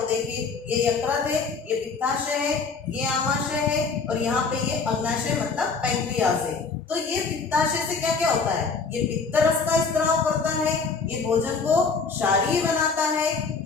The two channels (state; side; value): quieter; right; 4.8 dB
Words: देखिए ये यकृत है, ये पित्ताशय है, ये आमाशय है और यहाँ पे ये अग्नाशय मतलब पैंक्रियास है। तो ये पित्ताशय से क्या क्या होता है, ये पित्त रस का स्त्राव करता है, ये भोजन को क्षारीय बनाता है,